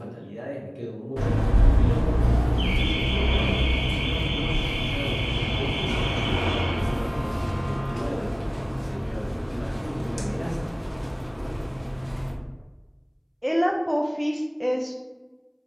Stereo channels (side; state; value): both; identical; correlation 1.00